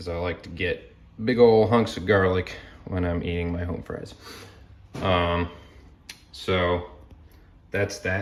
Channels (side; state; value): both; identical; correlation 1.00